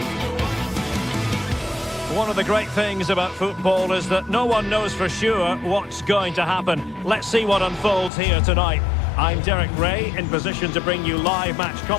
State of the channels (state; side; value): drops out; right; at 8.1 s